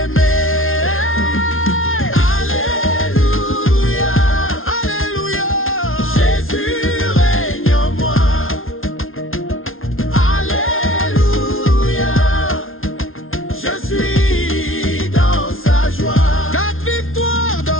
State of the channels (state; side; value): late; right; 0.60 ms